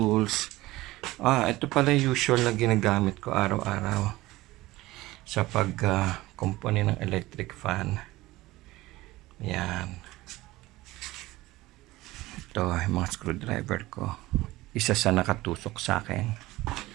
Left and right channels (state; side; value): quieter; left; 18.4 dB